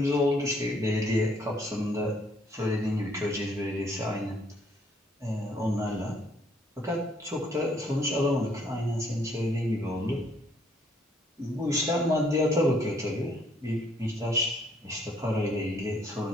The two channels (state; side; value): normal; both; correlation 0.66